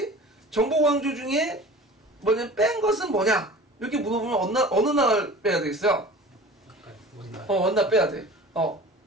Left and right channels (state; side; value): normal; both; correlation 0.41